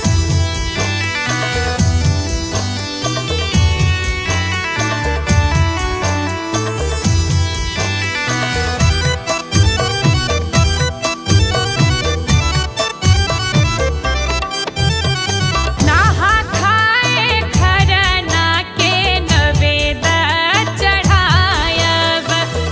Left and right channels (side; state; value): both; identical; correlation 1.00